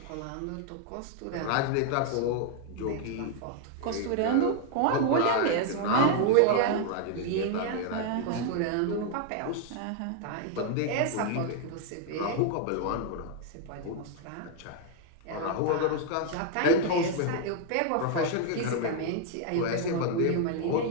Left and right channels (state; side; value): different; both; correlation 0.00